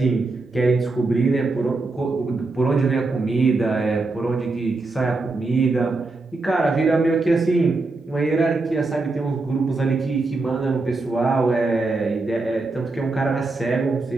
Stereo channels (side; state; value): left; quieter; 3.4 dB